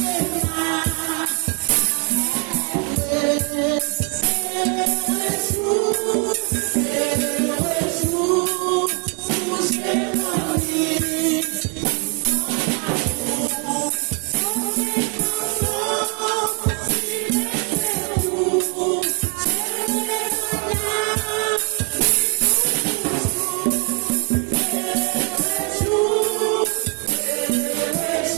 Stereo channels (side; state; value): left; quieter; 37.4 dB